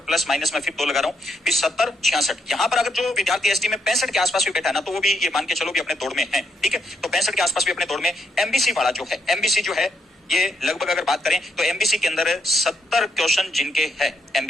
प्लस माइनस में फिर 2 लगा रहा हूं, 70 66 यहां पर अगर जो विद्यार्थी एसटी में 65 के आसपास भी बैठा है ना, तो वो भी ये मान के चलो भी अपने दौड़ में है, ठीक है। तो 65 के आसपास भी अपने दौड़ में। एमबीसी वाला जो है, एमबीसी जो है ये लगभग अगर बात करें तो एमबीसी के अंदर 70 क्वेश्चन जिनके है,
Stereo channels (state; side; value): normal; both; correlation 0.77